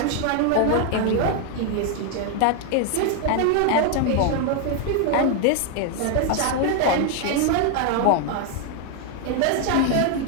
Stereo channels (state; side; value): different; both; correlation 0.00